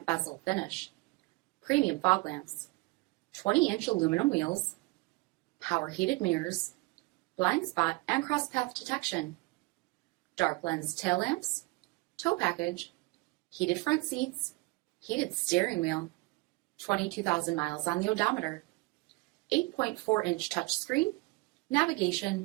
bezel finish, premium fog lamps, 20-inch aluminum wheels, power heated mirrors, blind spot and cross path detection, dark lens tail lamps, tow package, heated front seats, heated steering wheel, 22,000 miles on the odometer, 8.4-inch touchscreen,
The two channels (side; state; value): left; quieter; 24.1 dB